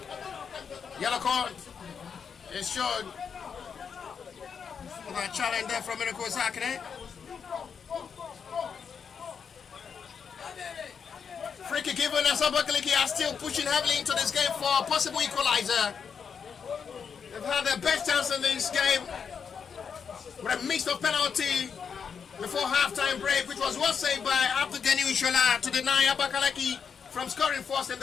yellow card is shown for that challenge there from Miracle Zekere. Free kick given as Abakaliki are still pushing heavily into this game for a possible equalizer. They've had their best chance in this game with a mix of penalty before halftime break, which was well saved by Abdugani Ishola to deny Abakaliki from scoring first in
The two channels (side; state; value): right; quieter; 6.6 dB